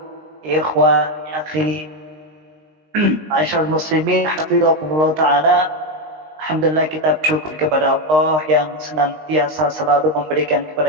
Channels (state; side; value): late; left; 19 ms